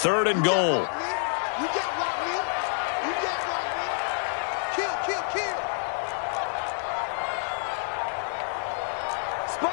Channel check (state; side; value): silent; right; digital silence